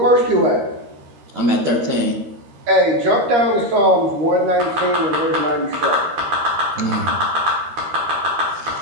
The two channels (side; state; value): left; late; 13 ms